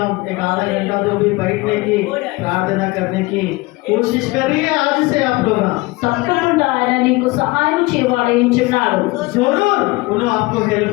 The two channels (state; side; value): quieter; right; 22.3 dB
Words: एक आधा घंटा तो भी बैठने की प्रार्थना करने की कोशिश करिए आज से आप लोग। తప్పకుండా ఆయన నీకు సహాయం చేయవాడు ఇచ్చున్నాడు. जरूर उन्होंने आपको हेल्प